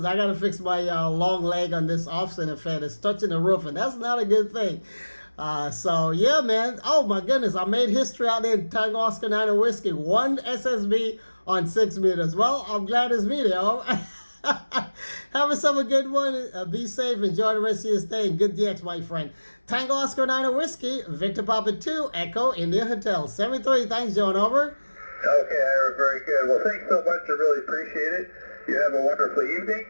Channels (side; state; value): both; inverted; correlation -1.00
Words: I got to fix my long leg on this off-center fan. It's touching the roof, and that's not a good thing. So, yeah, man. Oh, my goodness. I made history out there in Tango Oscar 9 Whiskey. 1 SSB on 6 meters. Well, I'm glad it's me there. Have yourself a good one. Be safe. Enjoy the rest of your stay. And good DX, my friend. Tango Oscar 9 Whiskey, Victor Papa 2, Echo, India Hotel. 73. Thanks, John. Over. Okay, Ira, very good. Well, thanks so much. I really appreciate it. You have a wonderful evening,